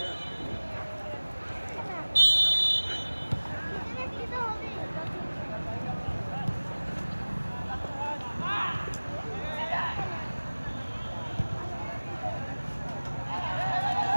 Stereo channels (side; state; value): both; inverted; correlation -1.00